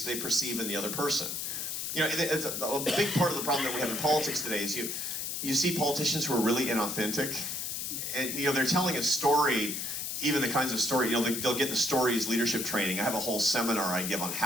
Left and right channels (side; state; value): left; noise; hiss, 3 dB below the sound